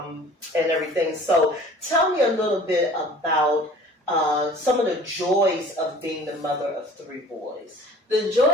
everything. So tell me a little bit about some of the joys of being the mother of 3 boys. The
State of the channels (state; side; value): normal; both; correlation 0.47